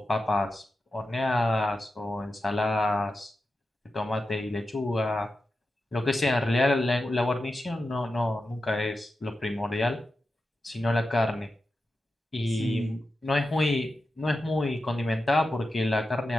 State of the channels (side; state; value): both; normal; correlation 0.91